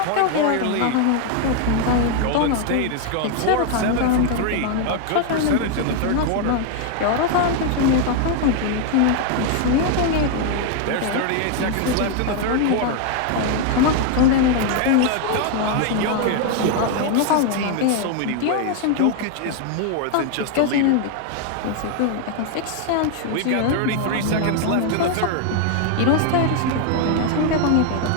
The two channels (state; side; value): different; both; correlation 0.00